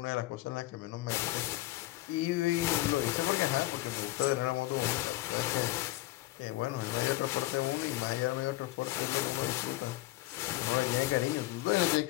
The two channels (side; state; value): right; quieter; 18.0 dB